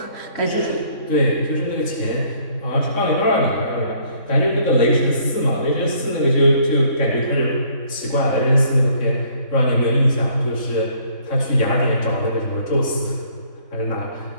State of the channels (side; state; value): right; late; 3.6 ms